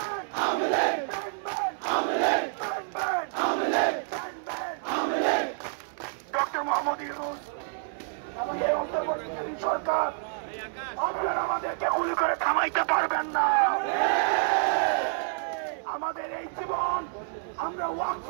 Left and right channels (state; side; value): silent; left; 59 dB below the other